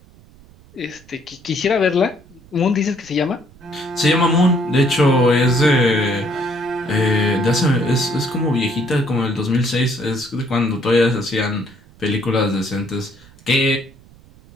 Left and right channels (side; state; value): right; noise; rumble, 26 dB below the sound